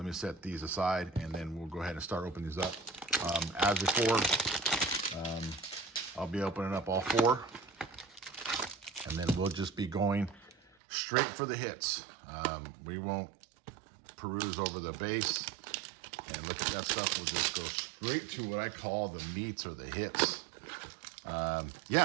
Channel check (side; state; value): left; drops out; at 10.7 s